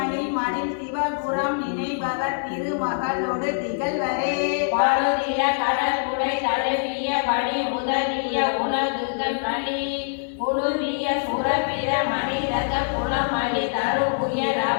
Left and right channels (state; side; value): silent; right; digital silence